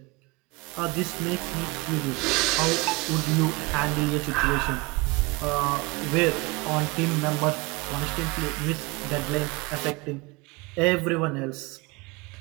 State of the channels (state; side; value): quieter; left; 25.1 dB